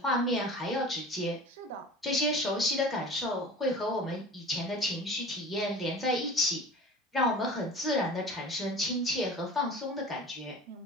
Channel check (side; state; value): both; normal; correlation 0.39